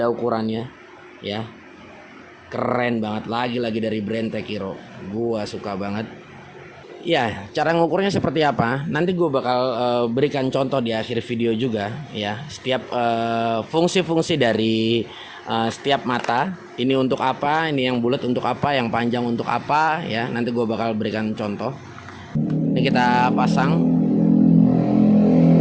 ukurannya ya. Keren banget, lagi-lagi dari brand Tekiro. Gua suka banget. Ya, cara ngukurnya seperti apa? Nanti gue bakal berikan contoh di akhir video juga ya. Setiap fungsi-fungsi dari setiap mata. Ini untuk apa? Ini yang bulat untuk apa? Yang panjang untuk apa? Ya, nanti gue bakal berikan contoh. Ini kita pasang.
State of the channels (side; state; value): both; identical; correlation 1.00